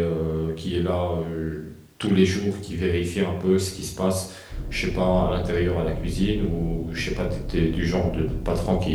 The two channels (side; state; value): both; identical; correlation 1.00